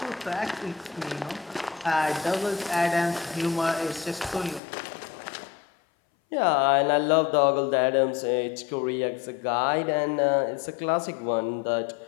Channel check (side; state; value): right; drops out; at 4.6 s